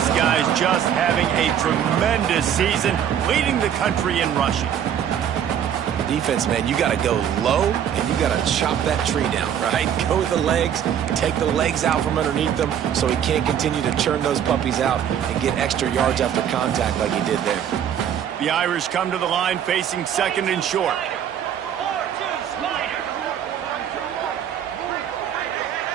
guy's just having a tremendous season, leading the country in rushing. Defense, man, you got to go low, and you got to chop that tree down, right? Go with the legs, take the legs out from underneath them so he can't continue to churn those puppies out and get extra yards after contact like he did there. The Irish come to the line facing second and short.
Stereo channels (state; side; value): quieter; left; 9.3 dB